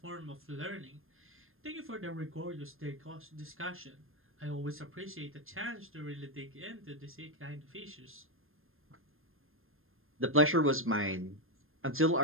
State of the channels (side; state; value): left; late; 0.60 ms